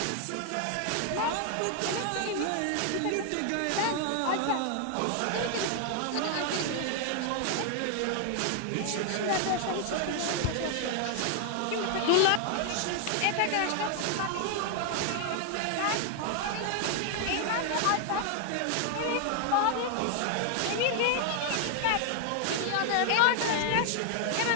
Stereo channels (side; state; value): both; different; correlation 0.00